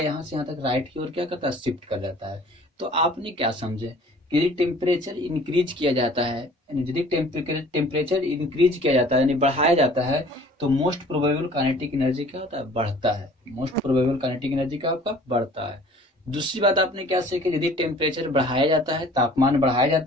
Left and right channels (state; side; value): normal; both; correlation 0.50